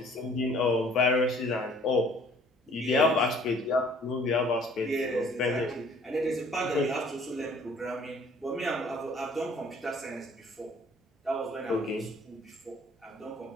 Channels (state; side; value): normal; both; correlation 0.56